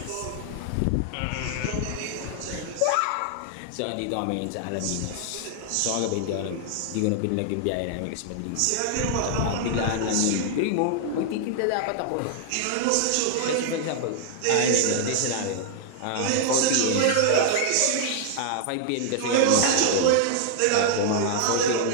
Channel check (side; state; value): both; different; correlation -0.01